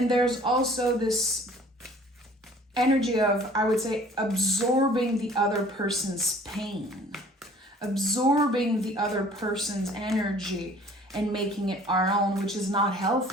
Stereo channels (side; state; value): both; normal; correlation 0.52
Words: there's also this energy of, I would say, absorbing the other person's pain, absorbing the other person's energy and making it our own, which is not